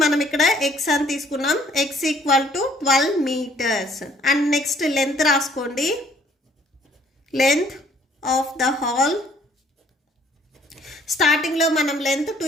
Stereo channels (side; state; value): both; normal; correlation 0.61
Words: మనం ఇక్కడ ఎక్స్ అని తీసుకున్నాం, X equal to 12 meters. And next length రాసుకోండి. లెంత్ ఆఫ్ ద హాల్, స్టార్టింగ్లో మనం లెంత్